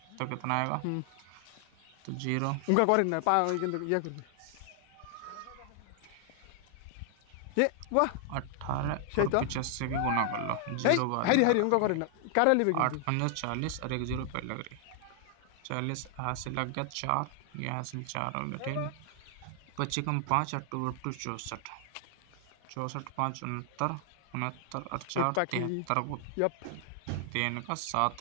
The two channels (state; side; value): different; both; correlation 0.00